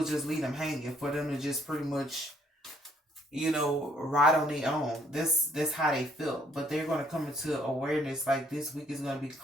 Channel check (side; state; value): both; normal; correlation 0.65